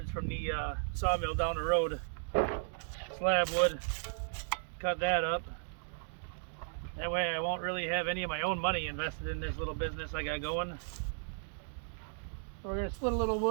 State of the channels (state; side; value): silent; left; digital silence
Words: from the sawmill down the road. Slab wood, cut that up. That way I won't really have any of my own money invested in this little business I got going. So we're going to split a little